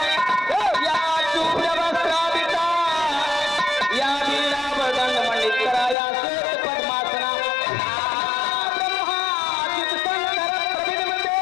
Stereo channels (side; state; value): right; drops out; at 6.0 s